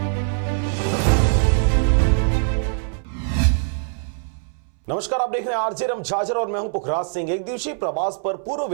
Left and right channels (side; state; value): left; silent; 64 dB below the other